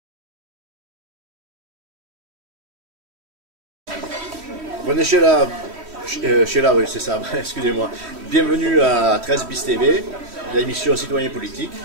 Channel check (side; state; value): left; late; 3.1 ms